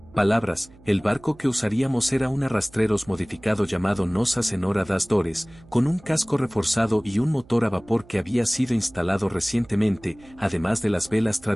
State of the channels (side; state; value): right; noise; hum, 24 dB below the sound